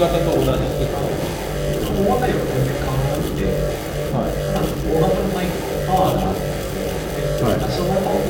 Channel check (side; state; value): both; identical; correlation 1.00